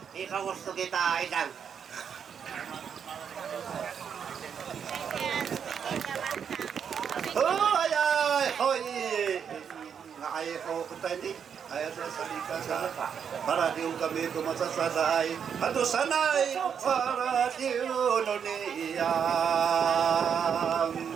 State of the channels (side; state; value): left; quieter; 7.5 dB